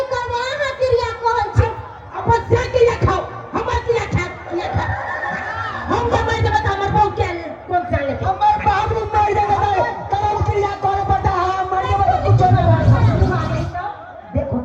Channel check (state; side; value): identical; both; correlation 1.00